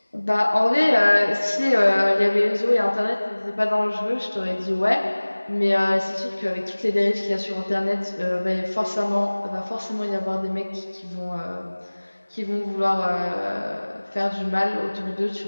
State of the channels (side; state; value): both; inverted; correlation -1.00